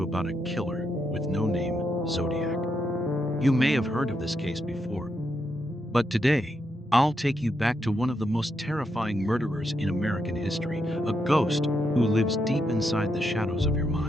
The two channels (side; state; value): both; normal; correlation 0.81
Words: about a killer with no name, Zodiac. You may have heard of this case before, but today I'll take you back to one of the most terrifying murderers in American history, a ghost who lives deep inside the shadows of your